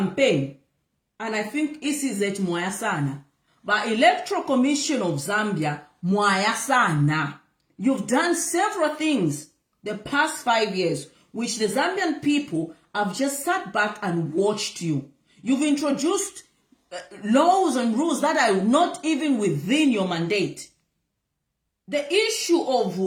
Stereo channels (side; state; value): both; identical; correlation 1.00